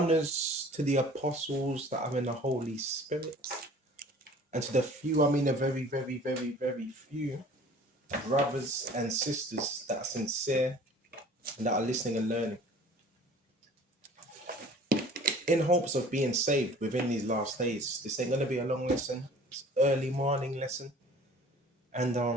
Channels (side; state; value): both; normal; correlation 0.48